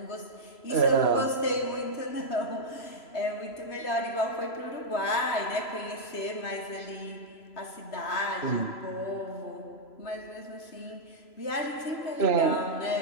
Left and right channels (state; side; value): late; right; 3.0 ms